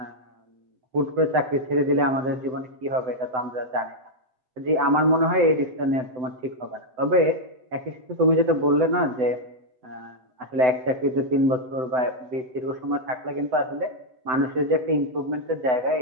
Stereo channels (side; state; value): left; late; 7.9 ms